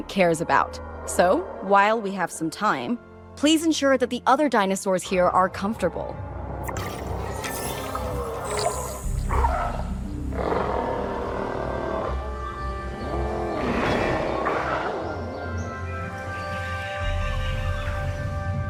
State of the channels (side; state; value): both; identical; correlation 1.00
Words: cares about. So, while we have some time, please ensure that the other dinosaurs here are comfortable.